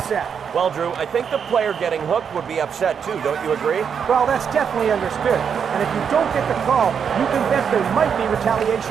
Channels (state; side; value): quieter; left; 7.1 dB